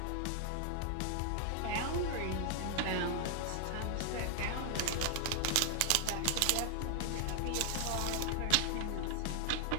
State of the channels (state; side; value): different; both; correlation 0.00